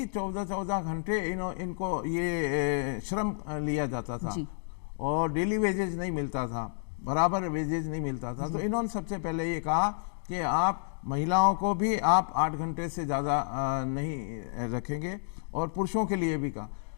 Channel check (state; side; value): silent; right; digital silence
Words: 14-14 घंटे इनको ये श्रम लिया जाता था और डेली वेजेज नहीं मिलता था, बराबर वेजेज नहीं मिलता था। तो इन्होंने सबसे पहले ये कहा कि आप महिलाओं को भी आप 8 घंटे से ज़्यादा नहीं रखेंगे, और पुरुषों के लिए भी कहा।